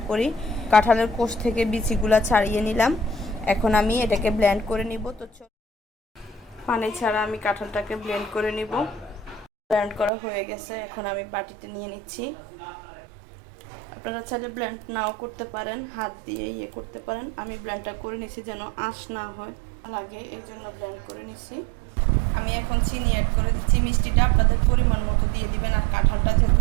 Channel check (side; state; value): left; drops out; at 10.1 s